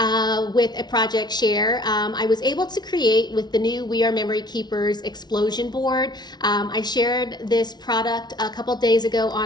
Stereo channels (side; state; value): right; late; 0.20 ms